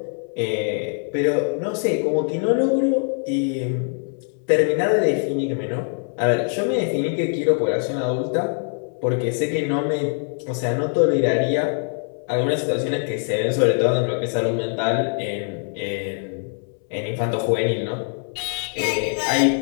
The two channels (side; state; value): right; silent; 57 dB below the other